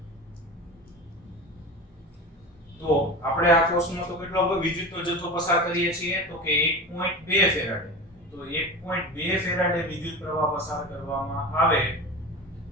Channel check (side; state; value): both; normal; correlation 0.29